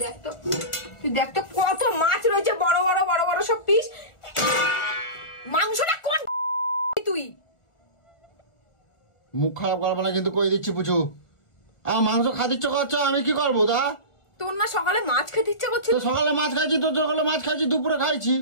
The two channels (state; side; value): late; right; 1.4 ms